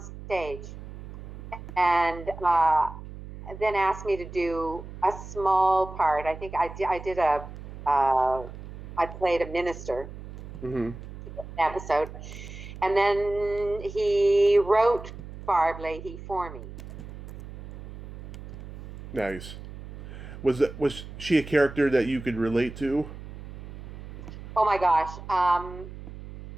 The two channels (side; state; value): right; noise; hum, 13 dB below the sound